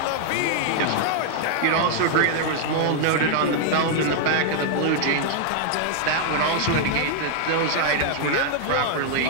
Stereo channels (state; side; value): different; both; correlation 0.00